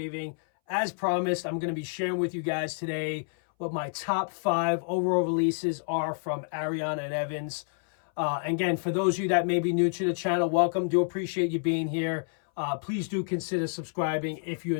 As promised, I'm going to be sharing with you guys today what my top 5 overall releases are from Ariana and Evans. Again, for those of you that may be new to the channel, welcome. Do appreciate you being here. Please do consider subscribing if you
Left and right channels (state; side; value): silent; right; 59 dB below the other